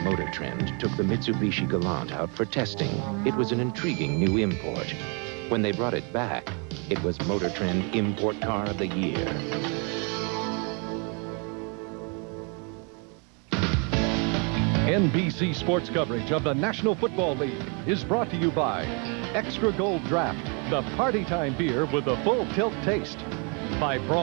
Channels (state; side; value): quieter; left; 35.3 dB